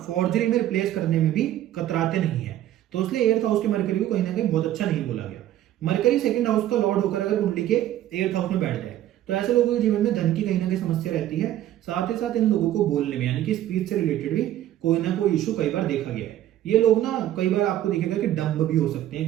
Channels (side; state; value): left; quieter; 12.8 dB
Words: फॉर्जरी में रिप्लेस करने में भी कतराते नहीं है। तो इसलिए 8th हाउस के मरकरी को कहीं ना कहीं बहुत अच्छा नहीं बोला गया। मरकरी 2nd हाउस का लॉर्ड होकर अगर कुंडली के 8th हाउस में बैठ जाए तो ऐसे लोगों के जीवन में धन की कहीं ना कहीं समस्या रहती है। साथ ही साथ इन लोगों को बोलने में यानी कि स्पीच से रिलेटेड भी कोई ना कोई इशू कई बार देखा गया है। ये लोग ना कई बार आपको दिखेगा कि डम्ब भी हो सकते हैं,